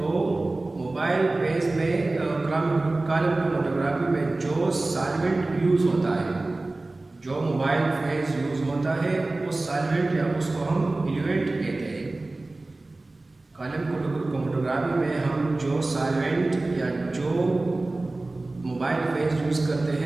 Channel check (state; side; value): quieter; left; 3.0 dB